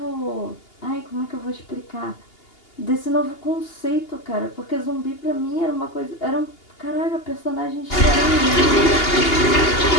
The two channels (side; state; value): right; late; 2.8 ms